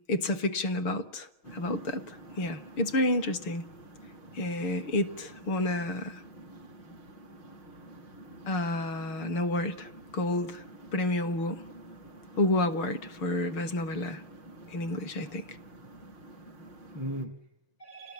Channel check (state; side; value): late; right; 6.4 ms